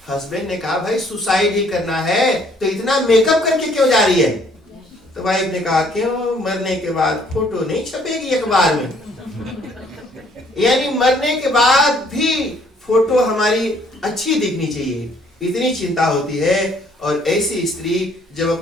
हस्बैंड ने कहा भाई सुसाइड ही करना है तो इतना मेकअप करके क्यों जा रही है? तो वाइफ ने कहा क्यों, मरने के बाद फोटो नहीं छपेगी अखबार में? यानी मरने के बाद भी फोटो हमारी अच्छी दिखनी चाहिए, इतनी चिंता होती है। और ऐसी स्त्री जब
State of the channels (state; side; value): normal; both; correlation 0.62